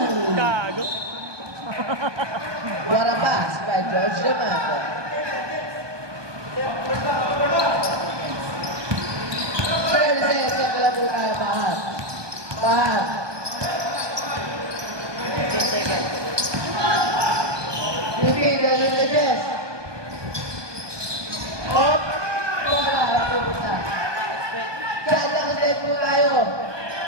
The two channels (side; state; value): left; late; 1.2 ms